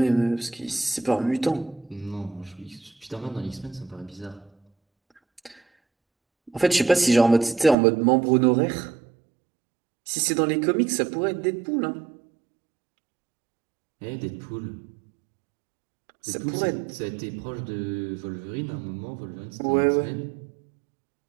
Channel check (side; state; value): left; drops out; at 7.8 s